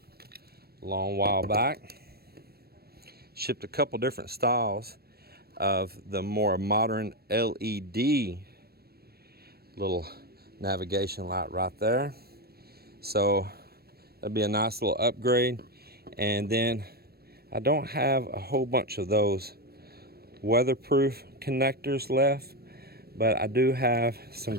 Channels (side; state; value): left; late; 0.46 ms